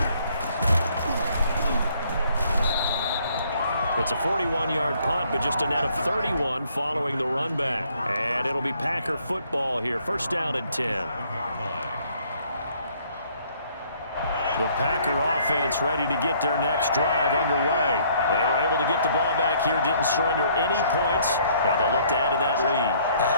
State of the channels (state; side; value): inverted; both; correlation -0.63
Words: It's a 41-yard punt, but just a net of 31 following the run back. And it'll be Packer football here. 1st down and 10. The Packer offense ready to get their next drive underway. They were able to get the ball back here, didn't surrender any points. Now they'll look to add to that lead. Now,